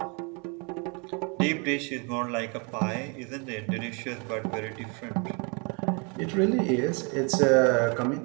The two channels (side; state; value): left; quieter; 33.6 dB